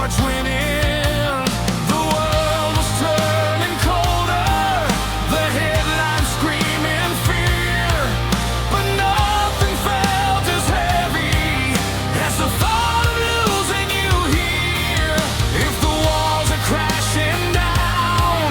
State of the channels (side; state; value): both; identical; correlation 1.00